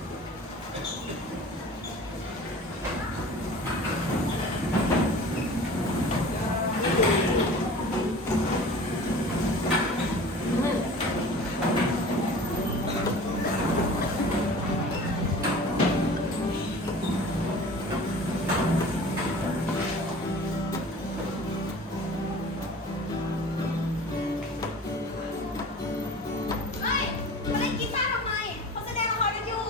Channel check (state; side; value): normal; both; correlation 0.41